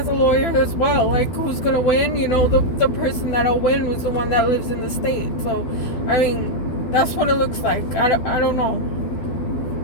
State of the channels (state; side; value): late; right; 12 ms